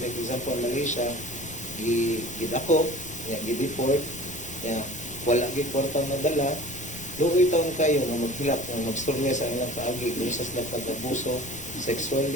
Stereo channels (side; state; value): left; noise; rumble, 17 dB below the sound